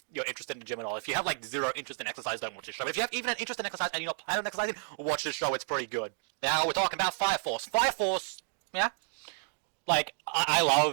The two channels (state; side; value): silent; left; digital silence